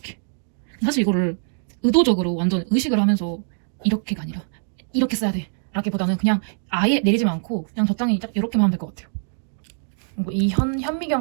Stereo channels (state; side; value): silent; left; digital silence